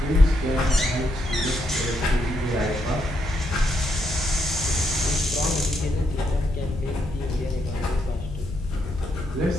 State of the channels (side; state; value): left; noise; hum, 10 dB below the sound